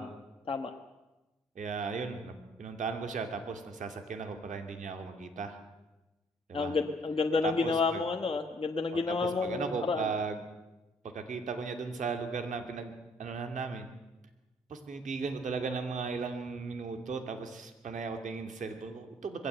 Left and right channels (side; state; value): both; normal; correlation 0.61